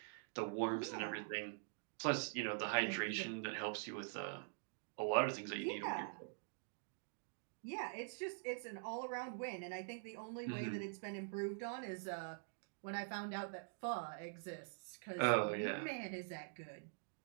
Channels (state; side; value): silent; left; digital silence